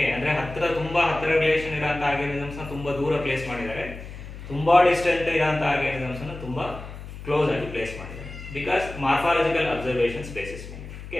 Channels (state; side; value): noise; left; hum, 12 dB below the sound